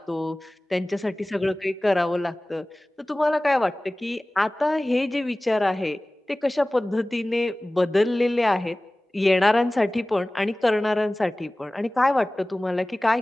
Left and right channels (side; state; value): both; normal; correlation 0.98